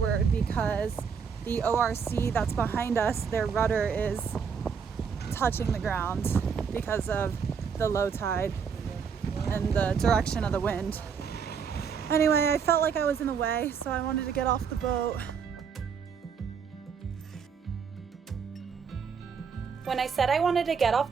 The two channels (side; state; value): left; quieter; 6.4 dB